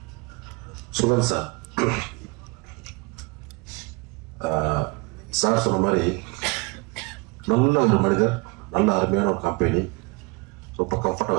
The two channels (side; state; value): left; quieter; 27.3 dB